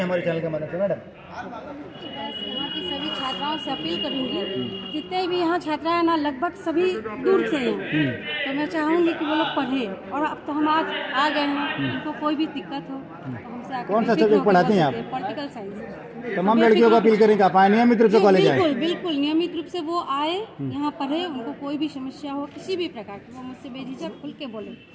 चैनल के मदद से मैडम? यहाँ की सभी छात्राओं से अपील करूंगी, जितने भी यहाँ छात्रा है ना, लगभग सभी दूर से हैं, तो मैं चाहूँगी कि वो लोग पढ़े। और अब तो हम आज आ गए हैं, उनको कोई भी दिक्कत हो तो हमसे आकर कौन सा सब्जेक्ट पढ़ाती हैं आप? Political science. तमाम लड़कियों को अपील करें कि आप आए नियमित रूप से कॉलेज आए। बिल्कुल बिल्कुल नियमित रूप से वो आए, यहाँ पढ़े। उनको कोई भी समस्या हो, किसी भी प्रकार की, वो मुझसे बेझिझक खुल के बोले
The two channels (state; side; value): identical; both; correlation 1.00